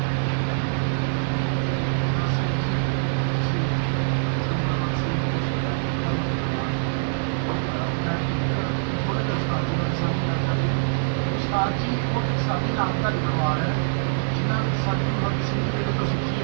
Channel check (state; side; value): silent; left; digital silence